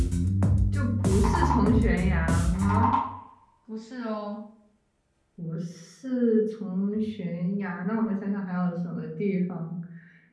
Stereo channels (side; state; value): both; identical; correlation 1.00